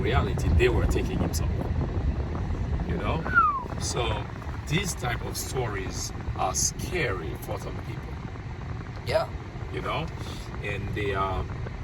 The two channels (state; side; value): identical; both; correlation 1.00